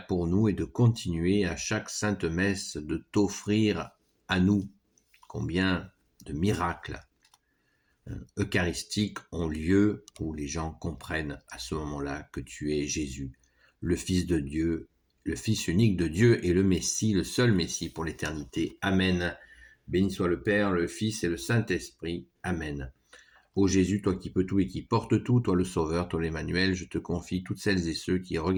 pour nous et de continuer à chaque sainte messe de t'offrir à nous. Combien de miracles eucharistiques ont lieu où les gens comprennent à ce moment-là que tu es Jésus, le Fils de Dieu, le Fils unique de Dieu et le Messie, le seul Messie pour l'éternité. Amen. Béni soit le Père, le Fils et le Saint-Esprit. Amen. Ô Jésus, toi qui peux tout et qui portes tout, toi le Sauveur, toi l'Emmanuel, je te confie toutes celles et ceux qui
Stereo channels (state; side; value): identical; both; correlation 1.00